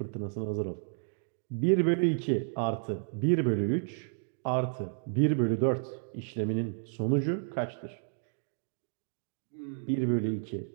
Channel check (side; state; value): left; silent; digital silence